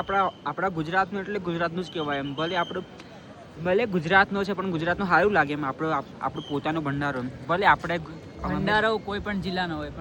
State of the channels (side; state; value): both; identical; correlation 1.00